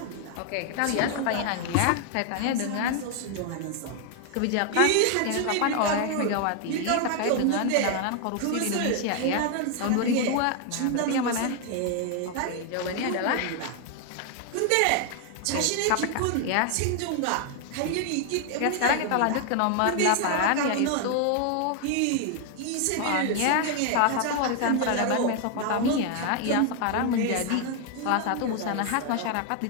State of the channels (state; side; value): different; both; correlation 0.00